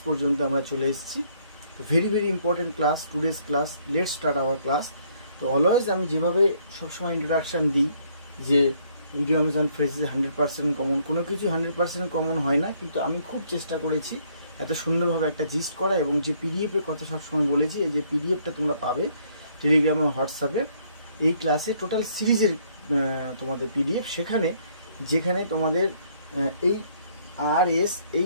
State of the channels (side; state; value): both; inverted; correlation -0.66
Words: পর্যন্ত আমরা চলে এসেছি। Very very important class, today's class. Let's start our class. তো অলওয়েজ আমি যেভাবে সবসময় ইন্ট্রোডাকশান দিই যে ইডিয়মস অ্যান্ড ফ্রেজেস 100% কমন, কোনো কিছু 100% কমন হয় না, কিন্তু আমি খুব চেষ্টা করেছি এত সুন্দরভাবে একটা জিস্ট করা। এবং যে পিডিএফের কথা সবসময় বলেছি, এই যে পিডিএফটা তোমরা পাবে টেলিগ্রামে, হোয়াটসঅ্যাপে, এই ক্লাসে টোটাল সিরিজের তোমাদের পিডিএফ, যেখানে তোমাদের এই